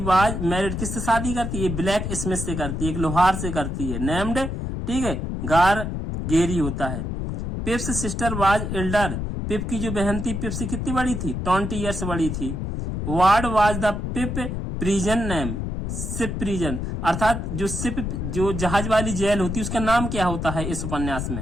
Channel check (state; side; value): noise; left; rumble, 3 dB below the sound